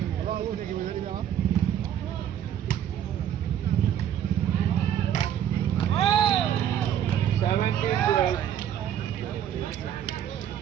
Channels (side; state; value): left; quieter; 10.2 dB